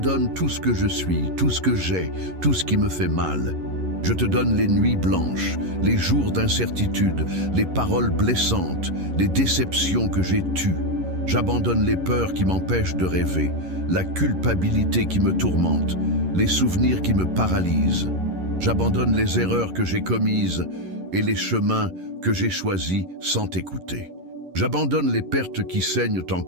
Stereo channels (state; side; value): late; left; 11 ms